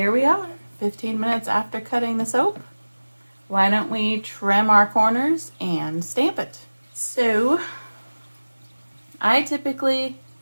we are, 15 minutes after cutting the soap. Why don't we trim our corners and stamp it? So, I typically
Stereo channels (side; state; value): both; inverted; correlation -1.00